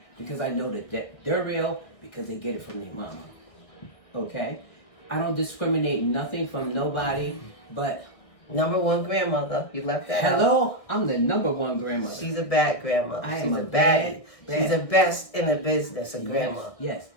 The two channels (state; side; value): late; right; 1.6 ms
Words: Because I know that they're real because they get it from their mama. Okay? I don't discriminate nothing from nobody, but... Number one grandmother. You left that out. Hello? I'm the number one grandmother. She's a bad grandmother. I She's am a a bad. bad- She's the best in the business, a grandma. Yes.